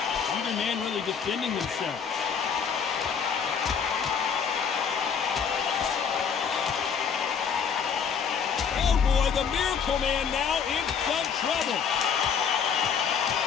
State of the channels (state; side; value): quieter; right; 6.8 dB